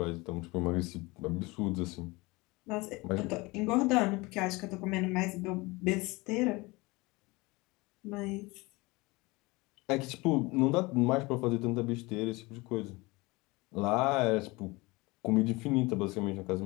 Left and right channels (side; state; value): right; quieter; 23.7 dB